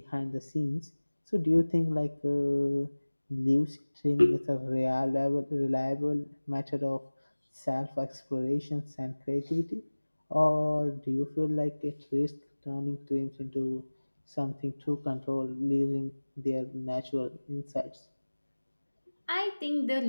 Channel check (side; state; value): both; inverted; correlation -1.00